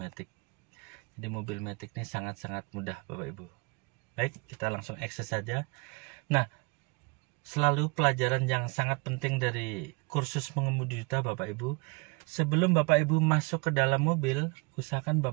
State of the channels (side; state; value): left; quieter; 29.3 dB